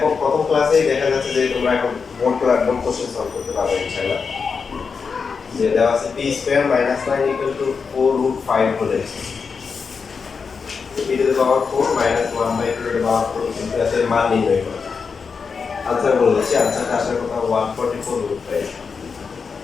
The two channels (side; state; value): right; quieter; 5.4 dB